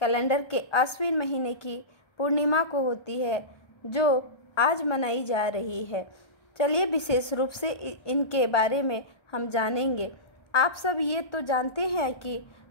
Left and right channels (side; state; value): right; late; 1.4 ms